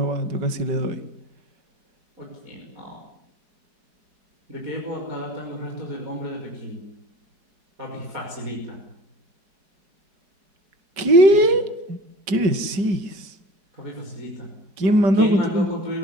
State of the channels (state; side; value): late; left; 5.1 ms